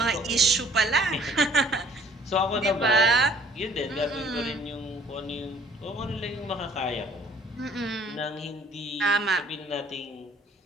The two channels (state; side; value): normal; both; correlation 0.57